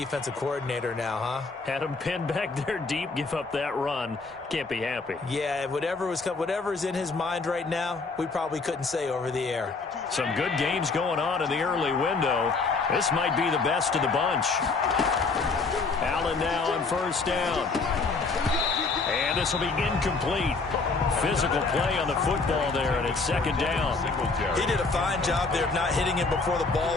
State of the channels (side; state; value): right; quieter; 4.1 dB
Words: coordinator now, huh? Had him pinned back there deep. Give up that run. Can't be happy. Yeah, whatever's in his mind right now, we probably couldn't say over the air. Some good games going on in the early window. This might be the best of the bunch. Allen now on 1st down. And this will be incomplete. Physical play on the football there, and it's 2nd down. He did a fine job there of not hitting him before the